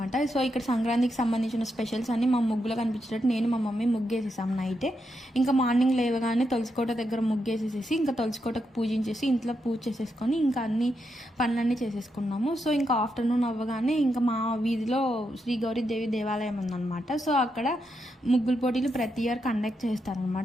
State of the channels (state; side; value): normal; both; correlation 0.83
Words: సో ఇక్కడ సంక్రాంతికి సంబంధించిన స్పెషల్స్ అన్ని మా ముగ్గులో కనిపించేటట్టు నేను మా మమ్మీ ముగ్గేసేసాం నైటే. ఇంకా మార్నింగ్ లేవగానే తులసికోట దగ్గర ముగ్గేసేసేసి ఇంకా తులసికోటకు పూజించేసి ఇంట్లో పూజ చేసేసుకొని ఇంకా అన్ని పనులన్నీ చేసేసుకున్నాము. సో ఇంకా ఆఫ్టర్నూన్ అవ్వగానే ఇంకా మా వీధిలో శ్రీ గౌరీదేవి దేవాలయం ఉందన్నమాట. సో అక్కడ ముగ్గుల పోటీలు ప్రతి ఇయర్ కండక్ట్